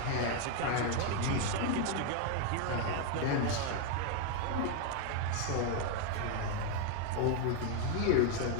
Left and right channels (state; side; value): different; both; correlation 0.01